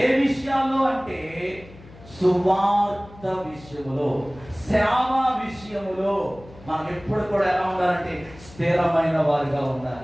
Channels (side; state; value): left; noise; hum, 21 dB below the sound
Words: ఏ విషయాల్లో అంటే సువార్త విషయములో, సేవ విషయములో మనం ఎప్పుడు కూడా ఎలా ఉండాలంటే స్థిరమైన వారిగా